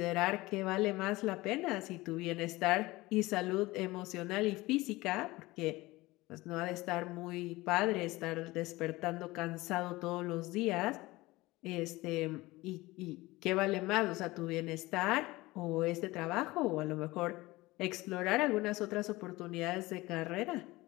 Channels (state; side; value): quieter; right; 20.2 dB